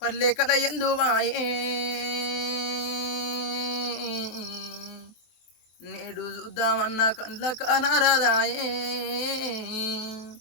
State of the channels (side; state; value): right; late; 23 ms